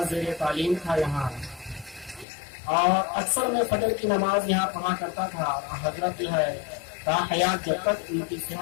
زیر تعلیم تھا یہاں اور اکثر میں فجر کی نماز یہاں پڑھا کرتا تھا. حضرت جو ہے تا حیات جب تک ان کی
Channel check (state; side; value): drops out; right; at 2.2 s